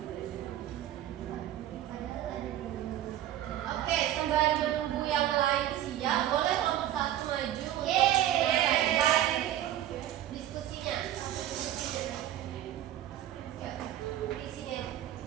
Oke, sembari menunggu yang lain siap, boleh kelompok 1 maju. Yeay. Diskusinya. Ya, isinya.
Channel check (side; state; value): left; quieter; 12.5 dB